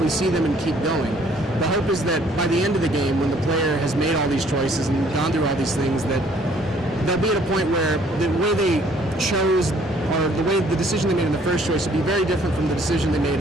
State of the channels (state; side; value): normal; both; correlation 0.61